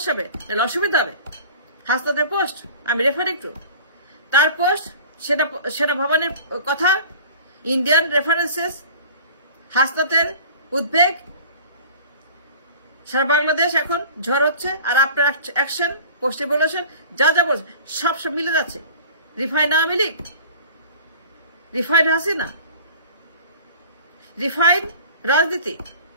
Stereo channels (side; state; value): both; inverted; correlation -0.42